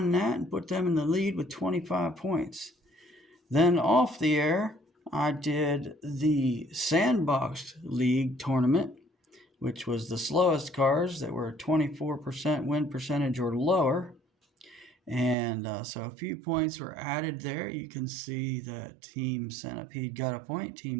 that and put them in the lead with 25 points. Then off the air, I did the Sandbox League tournament, which was the slowest cars that were 24% win percentage or lower. And so a few points were added there. You can see that Team Centipede got a point,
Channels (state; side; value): drops out; left; at 15.4 s